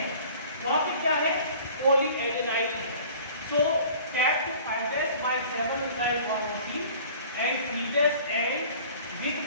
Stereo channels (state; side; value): inverted; both; correlation -0.47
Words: वहाँ पे क्या है? पॉलीएडेनाइन है. सो capped fibrous by 7 methyl farnesene and previous end with